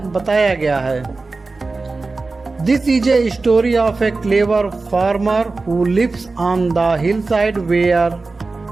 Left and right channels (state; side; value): quieter; left; 3.7 dB